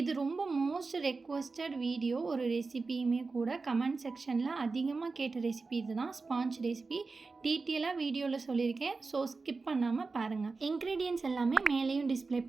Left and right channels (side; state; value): left; quieter; 4.1 dB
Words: ரொம்ப மோஸ்ட் ரெக்வஸ்டட் வீடியோ, ஒரு ரெசிபியுமே கூட. கமெண்ட் செக்ஷனில் அதிகமாக கேட்ட ரெசிபி இது தான், ஸ்பாஞ்ச் ரெசிபி. டீட்டெயிலாக வீடியோவில் சொல்லியிருக்கேன், ஸோ ஸ்கிப் பண்ணாமல் பாருங்கள். இன்க்ரீடியன்ட்ஸ் எல்லாமே மேலேயும் டிஸ்பிளே